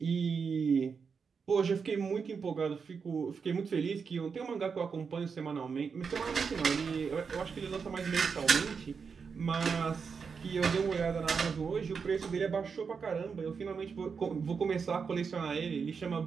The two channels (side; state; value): left; quieter; 5.7 dB